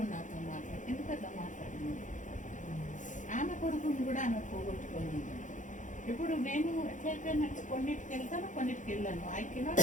నాతో మాట్లాడి, ఎందుకంటే మాట్లాడింది. ఆమె కొడుకుని కూడా ఆమె పోగొట్టుకోలేదు. ఇప్పుడు నేను ఎట్లయిపోయినట్టు కొన్నిటికి వెళ్తాను, కొన్నిటికి వెళ్ళాను. ఐ కెనాట్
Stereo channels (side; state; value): right; late; 0.37 ms